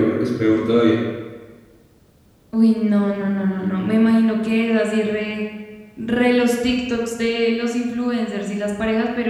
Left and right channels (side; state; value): both; identical; correlation 1.00